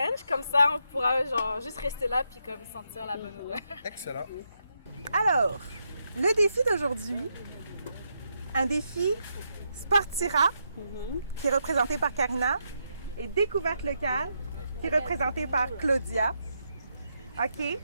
Comme ça, on pourra juste rester là puis comme sentir la bonne odeur. Excellent. Alors, le défi d'aujourd'hui, un défi Sportira, qui est représenté par Karina, et Découverte locale, qui est représentée par Claudia. OK?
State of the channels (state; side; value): inverted; both; correlation -0.81